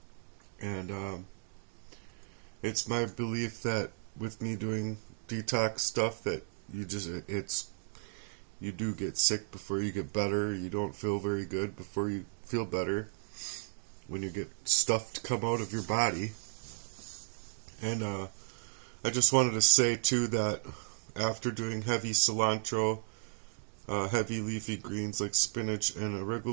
and it's my belief that with me doing detox stuff that you do get sick before you get better. You don't feel very good before you feel better when you get stuff to come out of your body. And I just wanted to say too that after doing heavy cilantro, heavy leafy greens like spinach and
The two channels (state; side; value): silent; left; digital silence